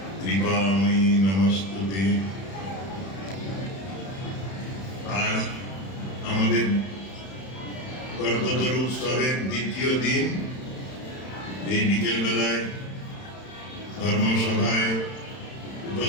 कृपामयी नमस्तुते। आज আমাদের কল্পতরু উৎসবের দ্বিতীয় দিন। এই বিকেলবেলায় ধর্মসভায়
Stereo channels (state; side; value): late; right; 31 ms